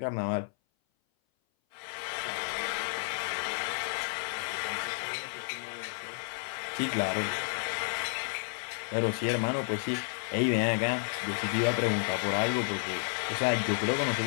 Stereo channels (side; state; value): right; silent; 57 dB below the other